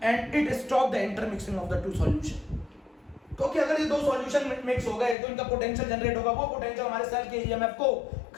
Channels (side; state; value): right; drops out; at 5.2 s